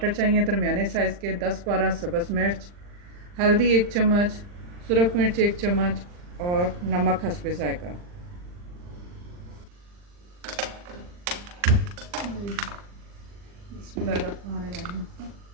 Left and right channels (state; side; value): late; left; 40 ms